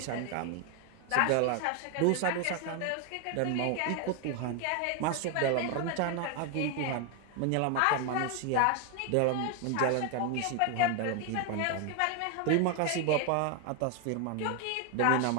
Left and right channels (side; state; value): both; different; correlation 0.01